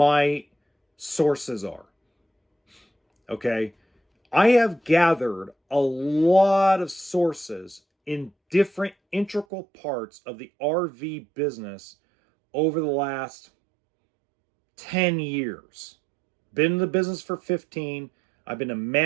sources are. Okay? I have gathered a lot of sources in different integral parts of the RV business over the last 10 years. Been in the business for 15. I've been a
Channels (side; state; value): left; drops out; at 9.5 s